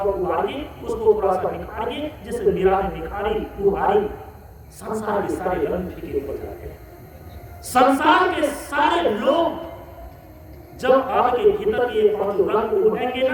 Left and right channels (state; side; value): identical; both; correlation 1.00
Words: उभारिए, उसको थोड़ा सा निखारिए, जिससे मीरा ने निखारी उभारी, संसार के सारे रंग फीके पड़ जाते हैं। संसार के सारे लोग जब आपके भीतर के 5 रंग उभरेंगे